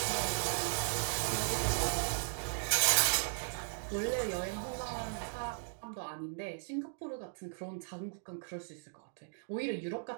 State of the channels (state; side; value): silent; left; digital silence